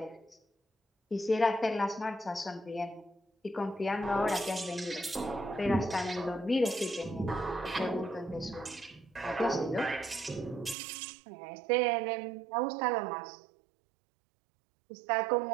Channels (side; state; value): left; drops out; at 10.8 s